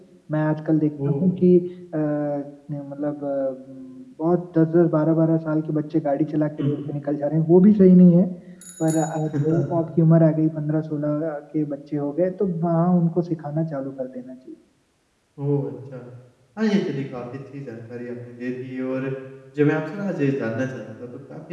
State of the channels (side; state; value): both; identical; correlation 1.00